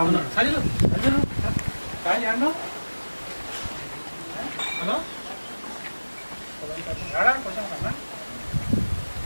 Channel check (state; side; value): inverted; both; correlation -1.00